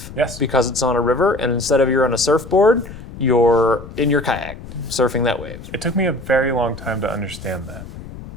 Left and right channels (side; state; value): left; noise; rumble, 14 dB below the sound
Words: Yes. Because it's on a river, and instead of you're on a surfboard, you're in your kayak surfing that wave. It took me a very long time to understand that.